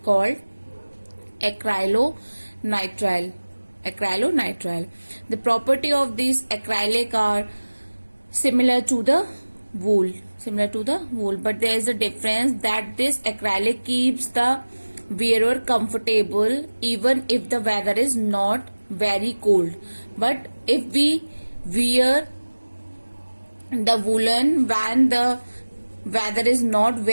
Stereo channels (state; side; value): inverted; both; correlation -1.00